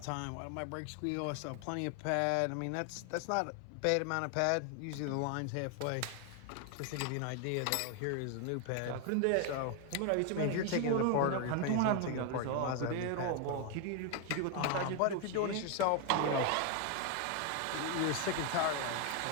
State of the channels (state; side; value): different; both; correlation 0.01